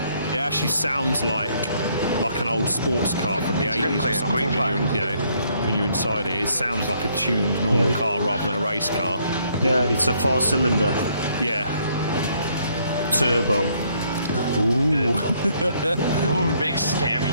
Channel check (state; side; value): inverted; both; correlation -0.68